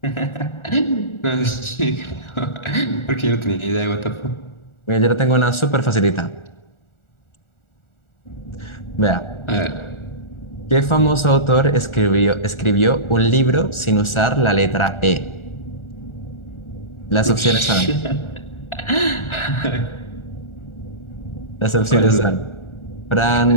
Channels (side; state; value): right; late; 1.4 ms